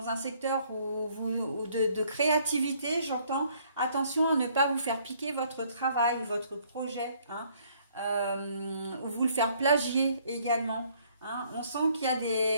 un secteur de créativité, j'entends, attention à ne pas vous faire piquer votre travail, votre projet, ou vous le faire plagier également. On sent qu'il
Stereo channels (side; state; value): both; inverted; correlation -0.64